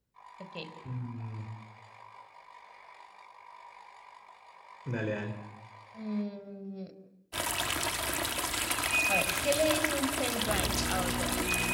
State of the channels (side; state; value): both; identical; correlation 1.00